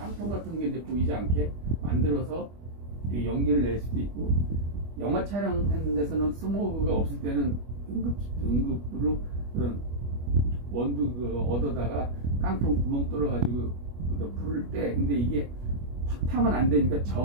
같은 게 이제 보이지 않게 만들어서 연기를 낼 수도 있고, 영화 촬영하는 데서는 스모그가 없을 때는 응급으로 그런 원두 얻어다가 깡통 구멍 뚫어가지고 불을 때, 근데 이게 확 타면 안 되니까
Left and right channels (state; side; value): late; left; 25 ms